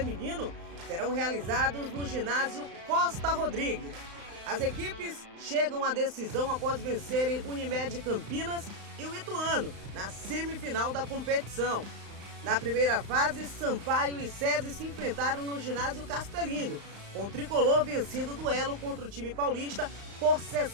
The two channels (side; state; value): left; late; 35 ms